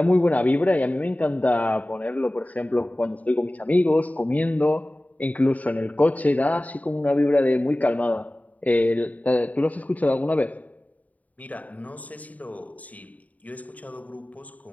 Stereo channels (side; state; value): right; late; 0.072 ms